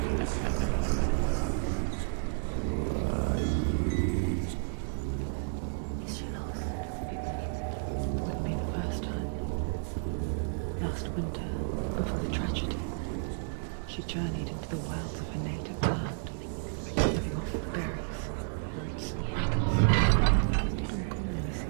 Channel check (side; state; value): left; silent; 57 dB below the other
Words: Is she lost? Wouldn't be the first time. Last winter, before the tragedy, she journeyed into the wilds of her native land, living off berries, roots, and rabbits. It's not uncommon, you